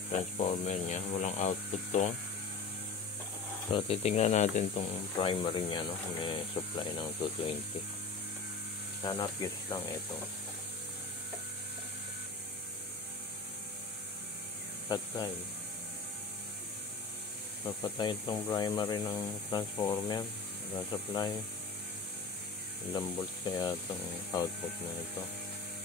Transformer niya, walang output to. So titingnan natin itong primary niya, kung may supply ng 220. Sana fuse lang ito. Patay. Papatay itong primary ng transformer. Wala supply. Ilang volts kaya itong output na ito.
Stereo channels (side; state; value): right; quieter; 4.0 dB